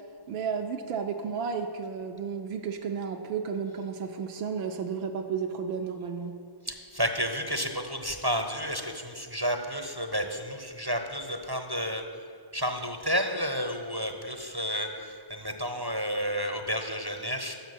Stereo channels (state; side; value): late; left; 1.1 ms